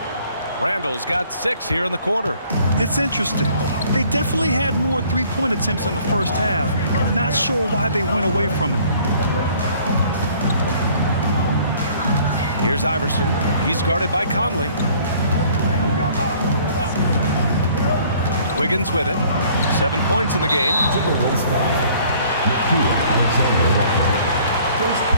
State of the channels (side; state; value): both; inverted; correlation -0.56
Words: Randall's got 6 here in the quarter. It's interesting. They definitely had more three-point attempts in the first half. Not sure why they went away from it. Here's Iverson. He's guarded by Conley. Wiggins with it. 7 points in the game. Timberwolves foul. Alexander Walker. First